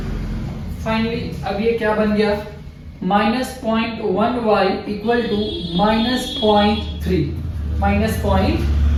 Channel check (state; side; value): identical; both; correlation 1.00